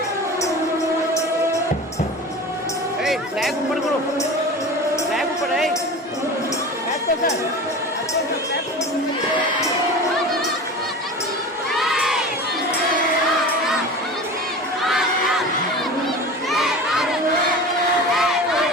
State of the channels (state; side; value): normal; both; correlation 0.34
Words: फ्लैग ऊपर करो, फ्लैग ऊपर है।